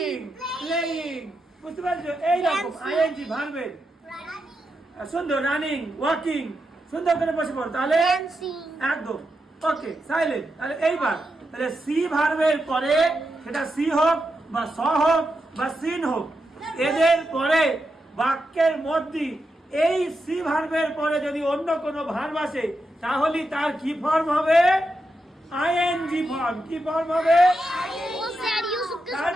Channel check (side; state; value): both; normal; correlation 0.86